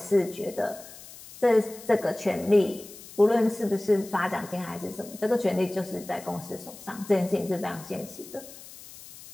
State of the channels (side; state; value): left; noise; hiss, 17 dB below the sound